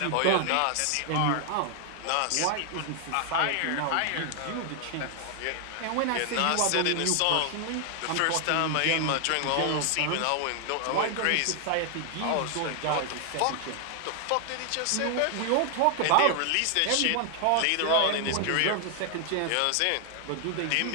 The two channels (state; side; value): different; both; correlation 0.00